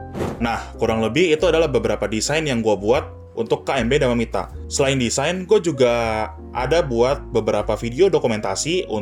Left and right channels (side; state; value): both; identical; correlation 1.00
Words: Nah, kurang lebih itu adalah beberapa desain yang gue buat untuk KM Beda Memita. Selain desain, gue juga ada buat beberapa video dokumentasi